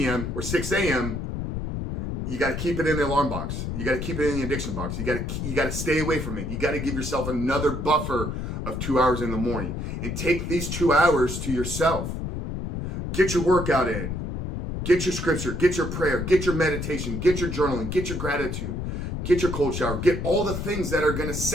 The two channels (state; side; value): noise; left; rumble, 4 dB below the sound